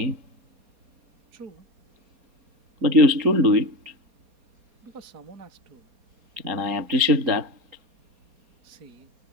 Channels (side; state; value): left; late; 4.2 ms